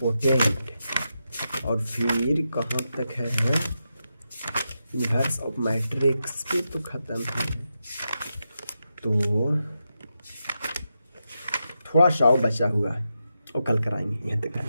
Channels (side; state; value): both; inverted; correlation -0.87